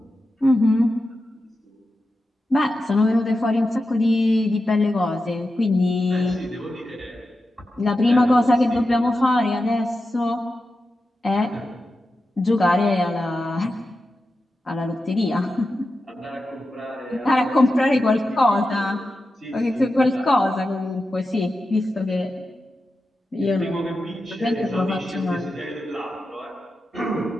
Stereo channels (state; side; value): normal; both; correlation 0.91